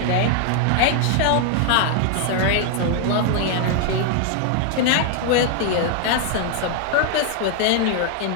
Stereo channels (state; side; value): different; both; correlation 0.00